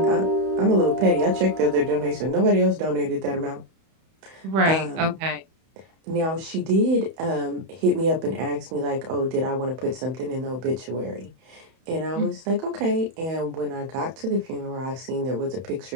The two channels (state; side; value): late; left; 31 ms